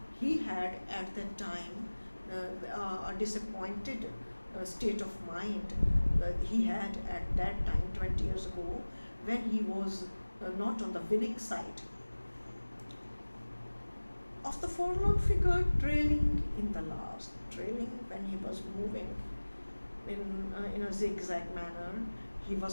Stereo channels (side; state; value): both; inverted; correlation -1.00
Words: He had at that time a disappointed state of mind. He had at that time 20 years ago when he was not on the winning side. Of the forlorn figure trailing in the last, trailing when he was moving in a zigzag manner, he